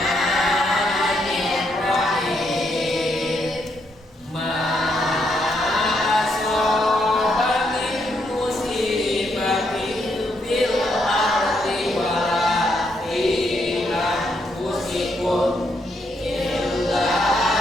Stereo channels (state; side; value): normal; both; correlation 0.77